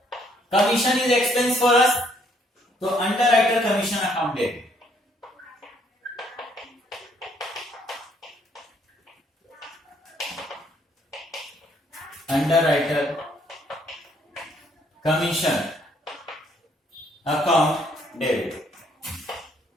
Commission is expense for us, तो अंडर राइटर कमीशन अकाउंट दे। Underwriter commission account debit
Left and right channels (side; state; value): both; normal; correlation 0.67